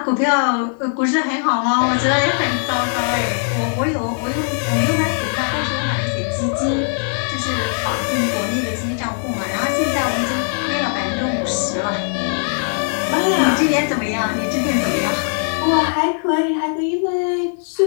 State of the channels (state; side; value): silent; right; 56 dB below the other